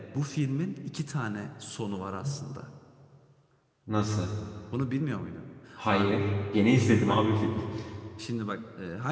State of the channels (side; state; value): both; identical; correlation 1.00